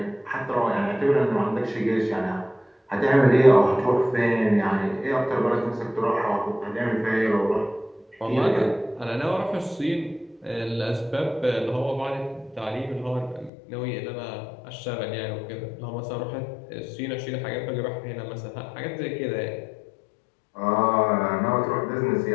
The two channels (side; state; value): right; drops out; at 13.5 s